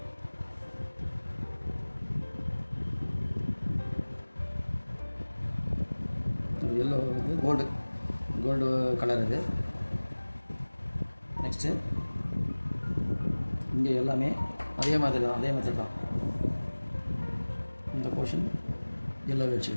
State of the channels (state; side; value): inverted; both; correlation -1.00